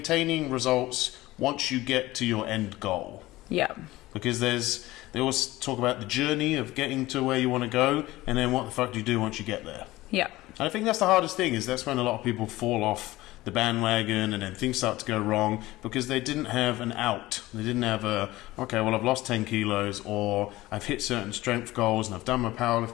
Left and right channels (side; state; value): right; quieter; 18.0 dB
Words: results once you get to your end goal. Yeah. Because they always talk about the journey of getting to where you want to go, and then what the fuck do you do once you get there? Yeah. And I think that's the hardest thing, is that's when a lot of people fall off the bandwagon and then things start to go wrong because they didn't have an out. They didn't have I've lost 10 kilos, or I've hit certain strength goals and I've done my